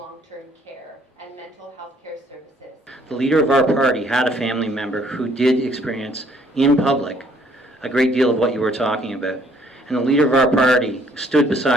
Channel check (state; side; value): normal; both; correlation 0.63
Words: care and mental health care services. The leader of our party had a family member who did experience in public a great deal of what you were talking about. And the leader of our party stood